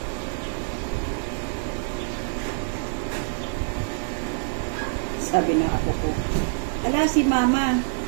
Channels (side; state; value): left; silent; digital silence